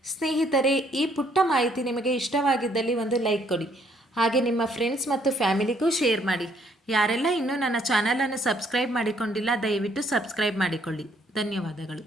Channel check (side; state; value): both; normal; correlation 0.67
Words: ಸ್ನೇಹಿತರೆ, ಈ ಪುಟ್ಟ ಮಾಹಿತಿ ನಿಮಗೆ ಇಷ್ಟವಾಗಿದ್ದಲ್ಲಿ ಒಂದು ಲೈಕ್ ಕೊಡಿ. ಹಾಗೆ ನಿಮ್ಮ ಫ್ರೆಂಡ್ಸ್ ಮತ್ತು ಫ್ಯಾಮಿಲಿಗೂ ಶೇರ್ ಮಾಡಿ. ಯಾರೆಲ್ಲ ಇನ್ನೂ ನನ್ನ ಚಾನಲನ್ನು ಸಬ್ಸ್ಕ್ರೈಬ್ ಮಾಡಿಕೊಂಡಿಲ್ಲ, ದಯವಿಟ್ಟು ಸಬ್ಸ್ಕ್ರೈಬ್ ಮಾಡಿಕೊಳ್ಳಿ. ಧನ್ಯವಾದಗಳು.